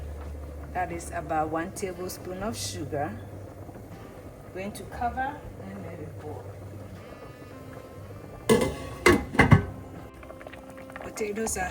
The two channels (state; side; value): identical; both; correlation 1.00